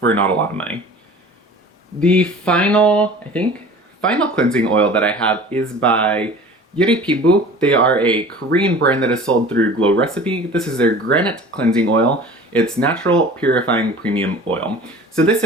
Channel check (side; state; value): both; normal; correlation 0.42